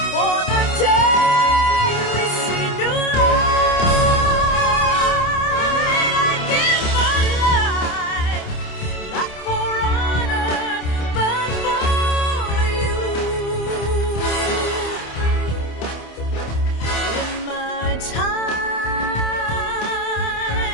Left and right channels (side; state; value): right; late; 27 ms